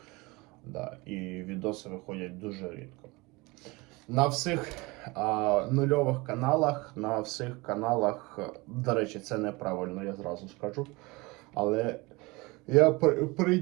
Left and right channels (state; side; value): quieter; left; 24.2 dB